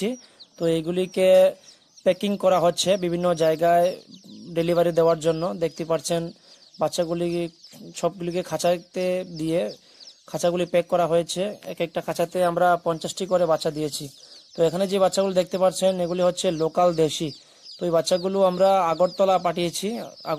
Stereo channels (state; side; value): identical; both; correlation 1.00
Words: তো এইগুলিকে প্যাকিং করা হচ্ছে বিভিন্ন জায়গায় ডেলিভারি দেওয়ার জন্য। দেখতে পাচ্ছেন বাচ্চাগুলি সবগুলিকে খাঁচাতে দিয়ে খাঁচাগুলি প্যাক করা হয়েছে। এক একটা খাঁচাতে আমরা 50টি করে বাচ্চা দিয়েছি। তো এখানে যে বাচ্চাগুলো দেখতে পাচ্ছেন এগুলি হচ্ছে লোকাল দেশি। তো এই বাচ্চাগুলো আমরা আগরতলা পাঠিয়েছি।